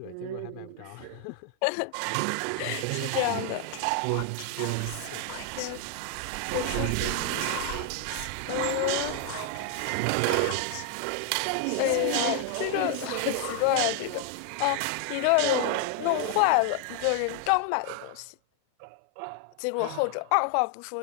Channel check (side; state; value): both; different; correlation 0.00